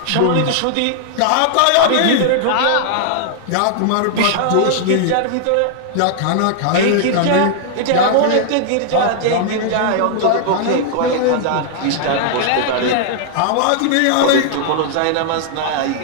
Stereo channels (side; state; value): both; different; correlation -0.01